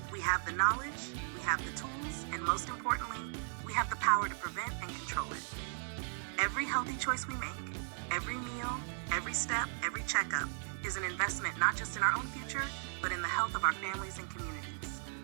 We have the knowledge, we have the tools, and most importantly, we have the power to prevent and control it. Every healthy choice we make, every meal, every step, every checkup, is an investment not just in our own future, but in the health of our families and communities.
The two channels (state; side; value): silent; left; 53 dB below the other